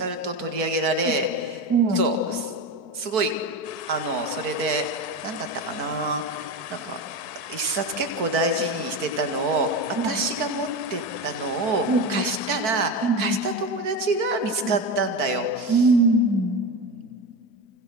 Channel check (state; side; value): late; left; 4.6 ms